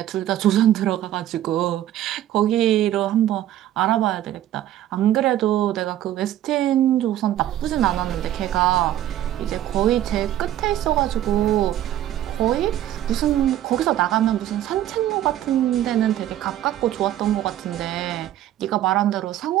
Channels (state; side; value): quieter; left; 12.5 dB